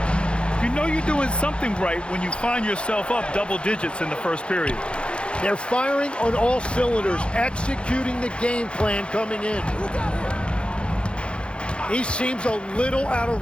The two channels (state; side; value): late; right; 0.057 ms